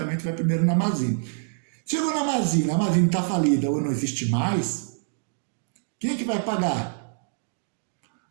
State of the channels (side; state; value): left; silent; 61 dB below the other